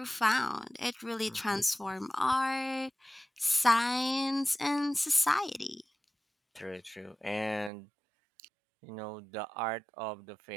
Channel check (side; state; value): left; drops out; at 7.7 s